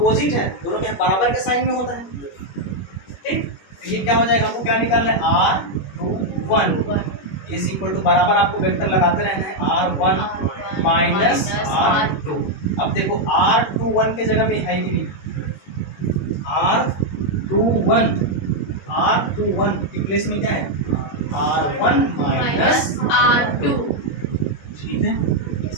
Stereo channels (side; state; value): right; late; 21 ms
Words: है, दोनों के बराबर के साइन में होता है, ठीक, तो ये क्या हो जाएगा, हमको क्या निकालना है, R21 इज इक्वल टू, बराबर आपको वेक्टर लगाते रहना है, R1 माइनस R2। अब देखो R21 के जगह में है कि नहीं, R21 के प्लेस में क्या है, R1 माइनस R2, ठीक है,